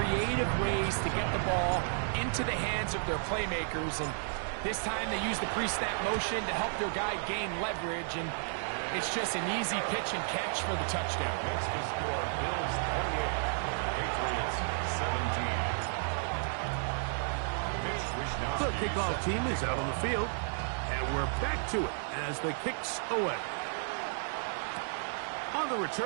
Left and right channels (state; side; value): silent; left; digital silence